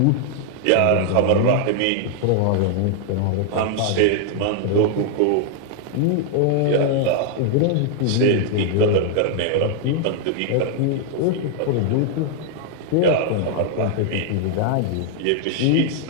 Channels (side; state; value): both; different; correlation 0.00